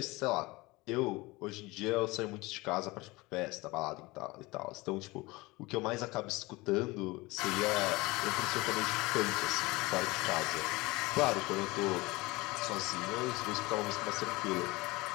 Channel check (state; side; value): quieter; right; 22.2 dB